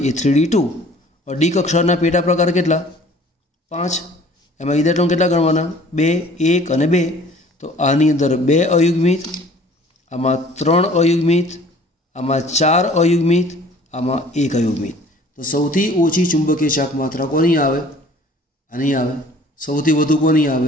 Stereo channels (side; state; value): both; normal; correlation 0.51